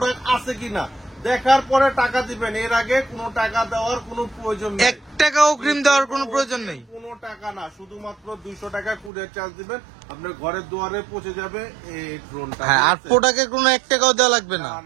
আছে কিনা দেখার পরে টাকা দিবেন, এর আগে কোনো টাকা দেওয়ার কোনো প্রয়োজন নেই। 1 টাকা অগ্রিম দেওয়ার কোনো প্রয়োজন নেই। কোনো টাকা না, শুধুমাত্র 200 টাকা কুরিয়ার চার্জ দিবেন, আপনার ঘরের দুয়ারে পৌঁছে যাবে এই ড্রোনটা। হ্যাঁ, আর ঠিক আছে? প্রোডাক্টের কোনো 1 টাকাও দেওয়া লাগবে না। না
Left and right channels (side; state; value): left; drops out; at 9.1 s